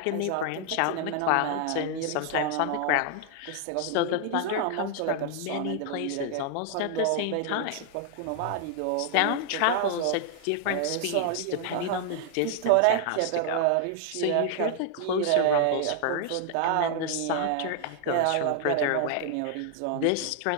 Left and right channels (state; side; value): different; both; correlation 0.00